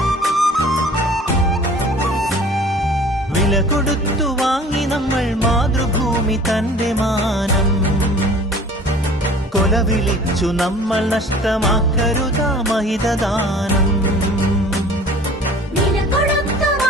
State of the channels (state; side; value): normal; both; correlation 0.47